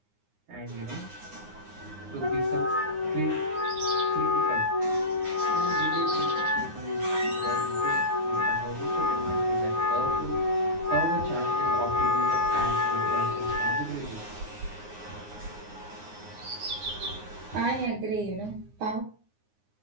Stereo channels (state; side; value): late; left; 9.7 ms